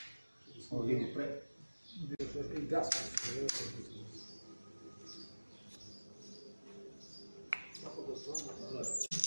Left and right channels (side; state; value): both; inverted; correlation -1.00